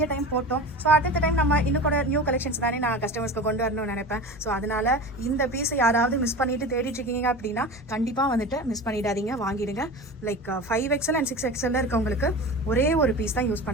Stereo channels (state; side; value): normal; both; correlation 0.32